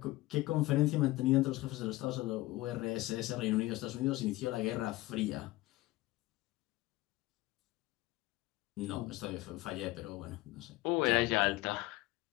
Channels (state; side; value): quieter; right; 18.8 dB